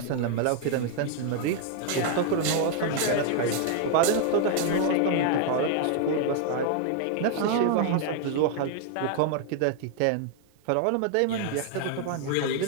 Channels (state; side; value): different; both; correlation 0.00